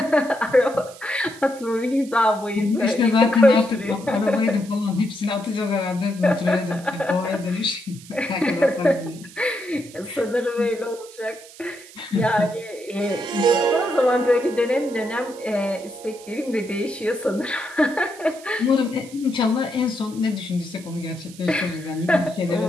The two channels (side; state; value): right; noise; hiss, 20 dB below the sound